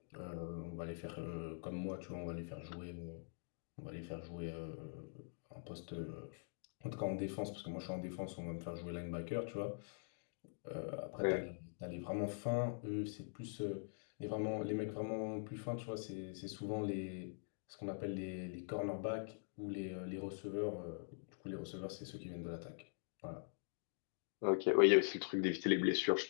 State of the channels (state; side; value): silent; right; digital silence